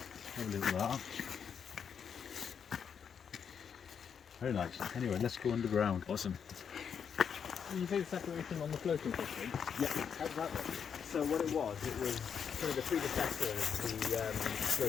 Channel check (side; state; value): right; quieter; 7.2 dB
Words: Have a look at that. Very nice. Anyway, let's go underground. Awesome. You think separation on the floating system? Yeah. How does that work? So what it was kind of the predecessor of the